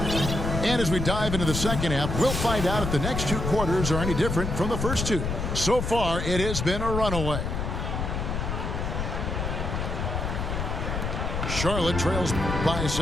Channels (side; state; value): left; noise; rumble, 2 dB below the sound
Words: And as we dive into the second half, we'll find out if the next 2 quarters are any different from the first 2. So far, it has been a runaway. Charlotte trails by